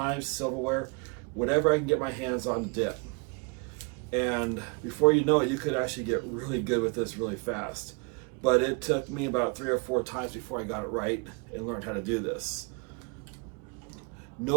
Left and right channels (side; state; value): left; quieter; 33.0 dB